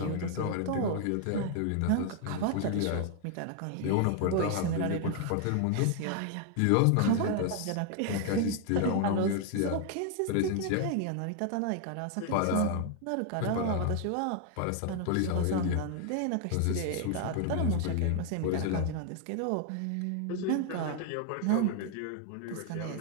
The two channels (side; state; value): both; different; correlation 0.00